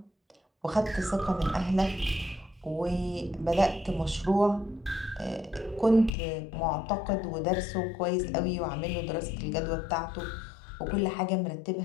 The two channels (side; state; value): right; drops out; at 6.1 s